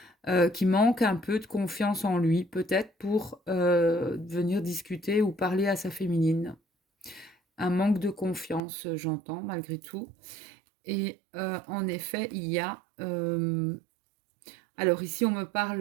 qui manque un peu de confiance en lui, peut-être pour venir discuter ou parler à sa féminine. Un manque de confiance, j'entends, malgré tout. Et en effet, il y a... alors ici, on me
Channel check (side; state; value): left; drops out; at 8.6 s